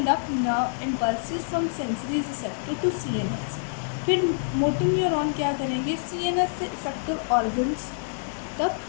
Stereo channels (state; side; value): silent; right; digital silence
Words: nerve impulses from sensory receptor to CNS। फिर मोटर न्यूरॉन क्या करेंगे, CNS से इफेक्टिव ऑर्गन्स